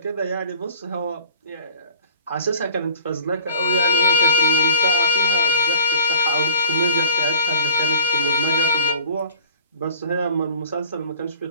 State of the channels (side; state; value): both; inverted; correlation -0.45